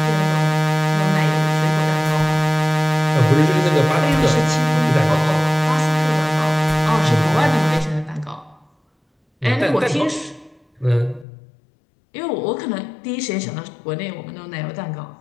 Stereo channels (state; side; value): drops out; right; at 11.2 s